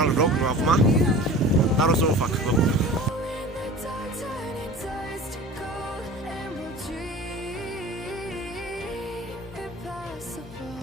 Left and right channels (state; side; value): normal; both; correlation 0.39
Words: vlog, nu acum. Dar o să o fac, vă pup.